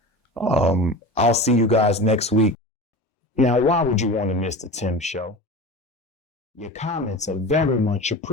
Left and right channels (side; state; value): both; normal; correlation 0.32